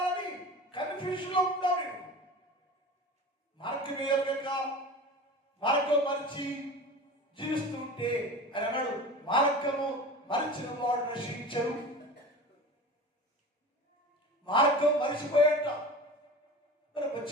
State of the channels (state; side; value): normal; both; correlation 0.34